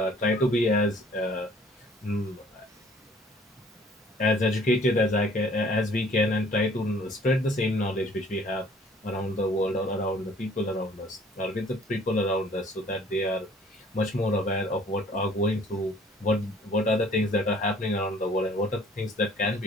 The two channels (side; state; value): both; normal; correlation 0.55